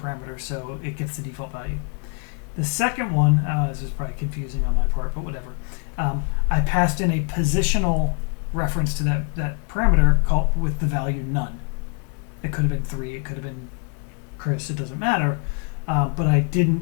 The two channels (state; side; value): quieter; right; 36.2 dB